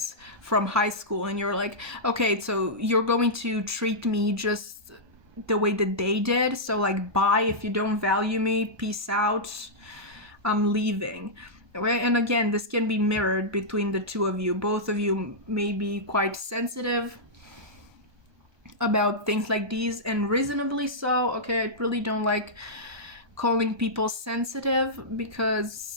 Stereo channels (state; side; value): late; left; 1.2 ms